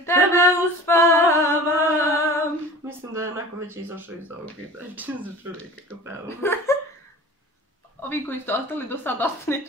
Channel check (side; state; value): both; normal; correlation 0.40